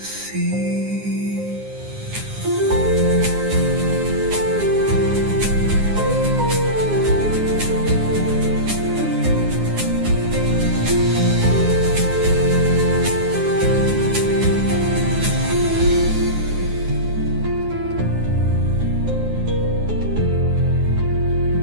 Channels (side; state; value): left; late; 9.6 ms